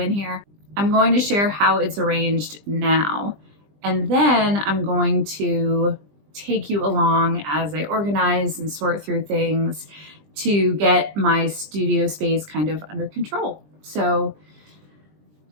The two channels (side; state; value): left; late; 20 ms